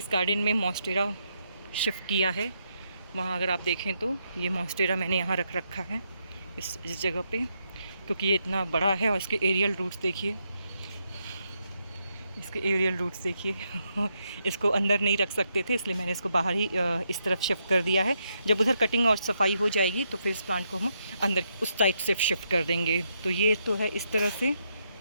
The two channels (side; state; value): both; inverted; correlation -0.79